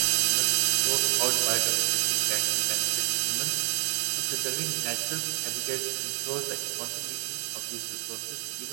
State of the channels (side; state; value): left; silent; 59 dB below the other